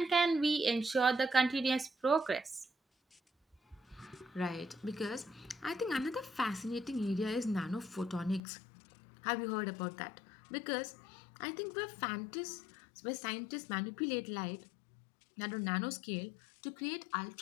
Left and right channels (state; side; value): drops out; right; at 8.4 s